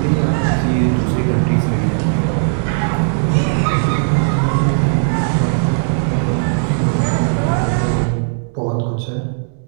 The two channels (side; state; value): left; silent; 68 dB below the other